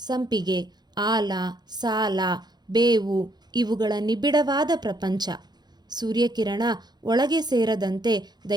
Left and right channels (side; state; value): left; late; 0.20 ms